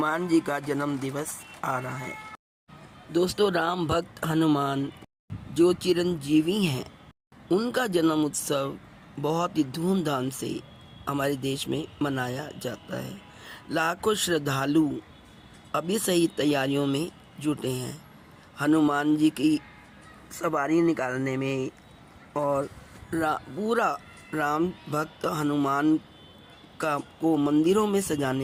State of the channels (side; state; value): both; identical; correlation 1.00